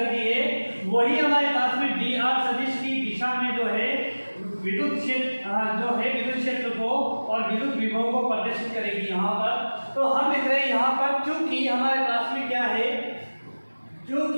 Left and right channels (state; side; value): inverted; both; correlation -1.00